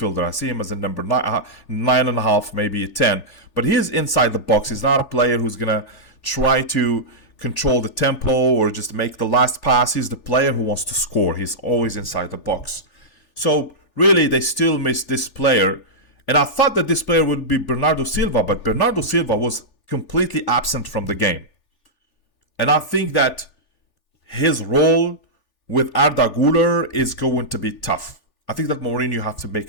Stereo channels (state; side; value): late; right; 3.4 ms